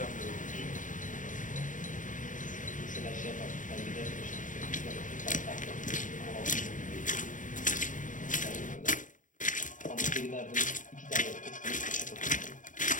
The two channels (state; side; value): late; right; 0.37 ms